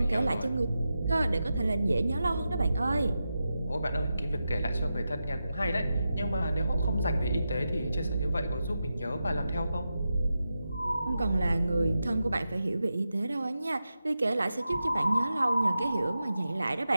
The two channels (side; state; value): both; inverted; correlation -0.90